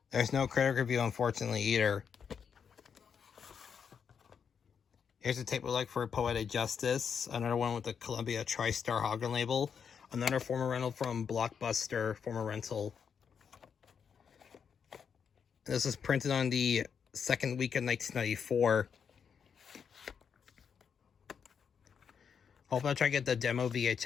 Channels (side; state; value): right; quieter; 6.9 dB